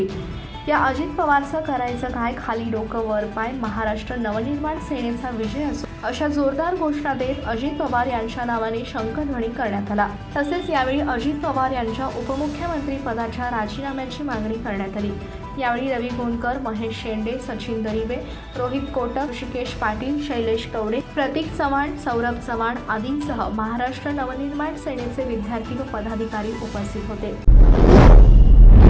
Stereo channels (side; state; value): both; identical; correlation 1.00